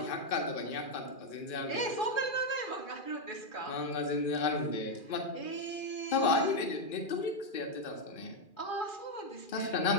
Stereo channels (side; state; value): right; late; 2.4 ms